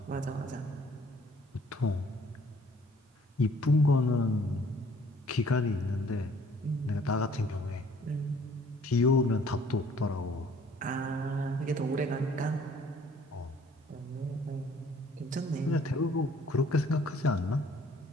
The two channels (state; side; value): normal; both; correlation 0.57